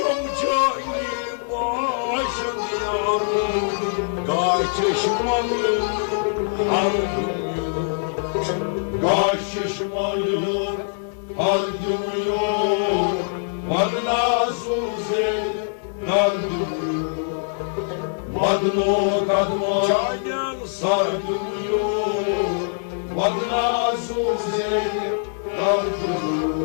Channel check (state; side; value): silent; right; digital silence